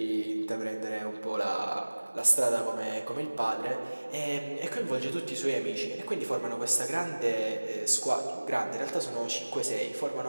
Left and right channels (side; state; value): both; inverted; correlation -1.00